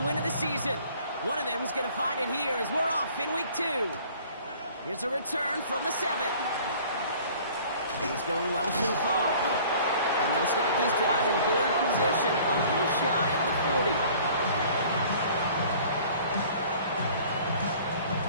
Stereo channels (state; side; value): inverted; both; correlation -0.51